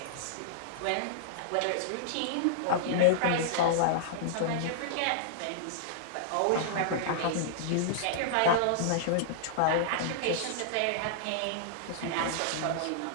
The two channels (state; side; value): different; both; correlation -0.01